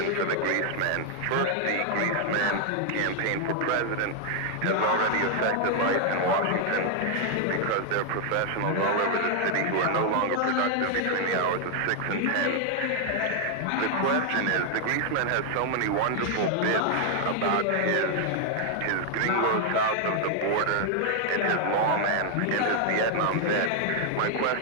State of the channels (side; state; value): both; different; correlation 0.00